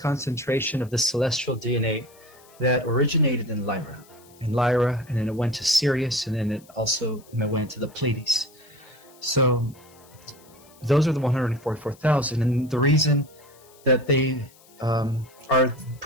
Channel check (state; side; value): noise; left; hiss, 26 dB below the sound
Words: concentration of the celestial DNA that originated in Lyra. And then it went to Sirius, and then it also went to the Pleiades. So those are the 144,000, and the reason that they are